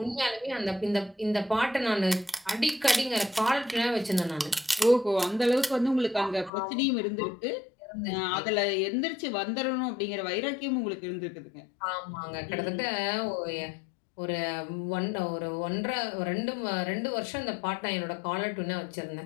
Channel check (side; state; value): right; drops out; at 6.5 s